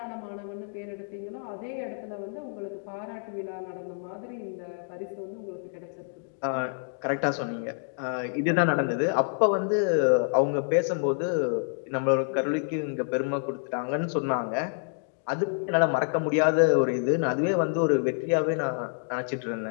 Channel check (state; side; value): silent; right; digital silence